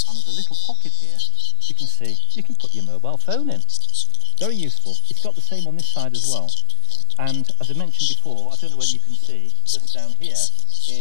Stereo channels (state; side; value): different; both; correlation 0.00